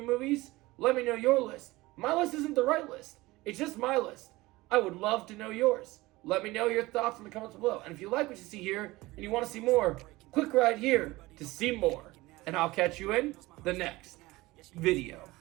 movies. Let me know your list. My list isn't the right list. It's just my list. I would love to know yours. Let me know your thoughts in the comments below. And if you like what you see here and you want to see more, click right here to see more. And I'll catch you in the next video.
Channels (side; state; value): left; quieter; 20.1 dB